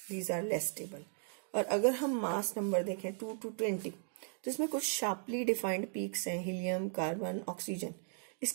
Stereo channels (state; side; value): silent; left; 53 dB below the other